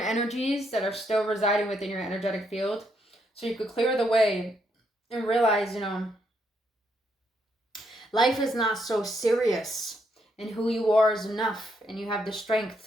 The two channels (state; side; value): normal; both; correlation 0.76